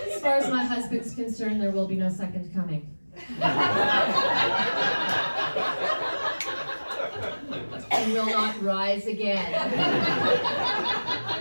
far as my husband's concerned, there will be no second coming. He will not rise again.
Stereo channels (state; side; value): inverted; both; correlation -1.00